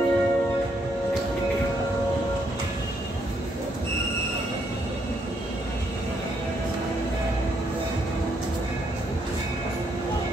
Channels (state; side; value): normal; both; correlation 0.73